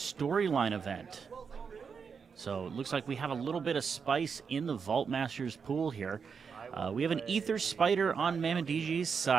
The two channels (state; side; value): quieter; left; 6.0 dB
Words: event. So it looks like we have a little bit of spice in the Vault Masters pool here. We have an Ether Spider on Mammon DG's